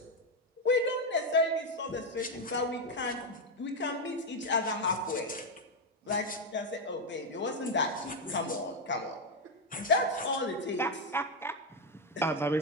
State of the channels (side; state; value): both; normal; correlation 0.05